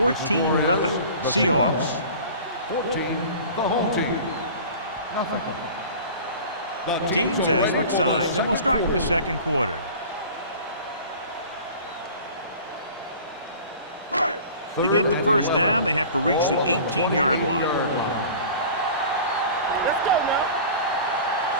Seahawks. 14, the home team. Nothing. The teams have switched sides, and we'll start the second quarter. To get the first down, they have to reach the 18-yard line.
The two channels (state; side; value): inverted; both; correlation -0.40